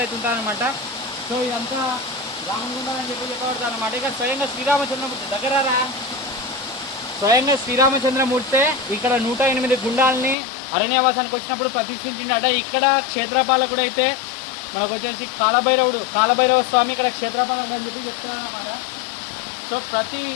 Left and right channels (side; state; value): right; drops out; at 10.4 s